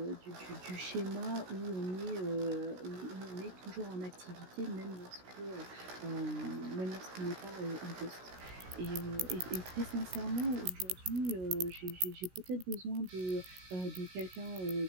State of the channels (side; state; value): left; late; 16 ms